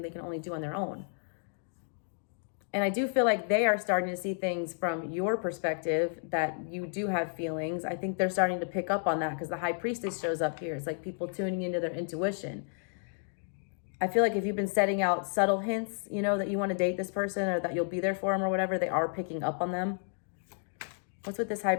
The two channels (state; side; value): silent; right; 57 dB below the other